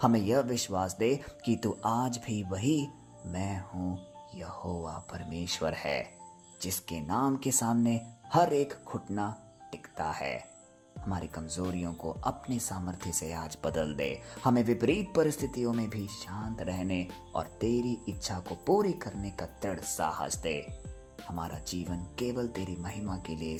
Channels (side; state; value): both; identical; correlation 1.00